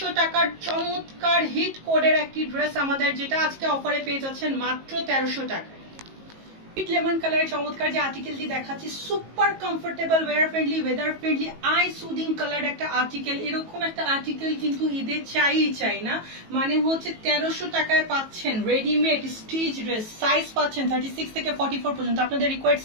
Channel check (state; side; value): late; left; 19 ms